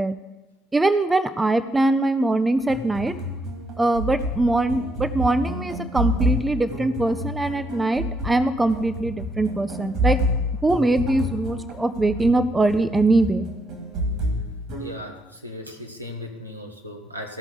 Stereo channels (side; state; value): both; normal; correlation 0.77